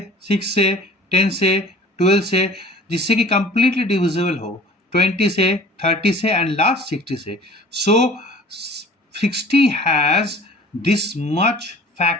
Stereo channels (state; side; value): normal; both; correlation 0.47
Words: 6 से, 10 से, 12 से, जिससे कि कंप्लीटली डिविजिबल हो, 20 से, 30 से एंड लास्ट 60 से. सो 60 हैज दिस मच